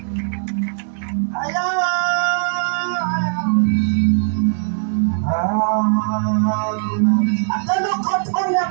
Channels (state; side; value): silent; left; 60 dB below the other